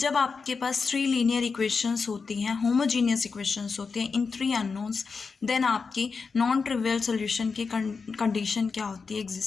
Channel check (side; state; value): right; quieter; 5.0 dB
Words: आपके पास 3 linear equations होती हैं, होमोजीनियस इक्वेशंस होती हैं इन 3 unknowns, then आपकी नॉन ट्रिवियल सोल्यूशन की condition क्या होती है